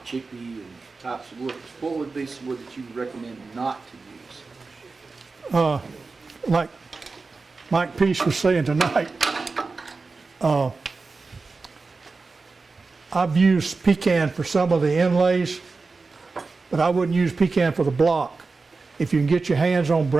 chippy and types of wood. What would be some wood that you would recommend not to use? Like Mike Peace was saying tonight, I've used pecan for some of the inlays, but I wouldn't use pecan for the block. If you can get your hands on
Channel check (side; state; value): left; quieter; 4.1 dB